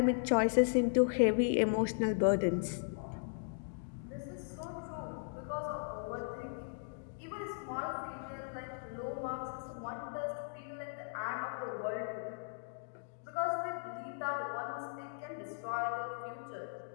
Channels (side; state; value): right; silent; digital silence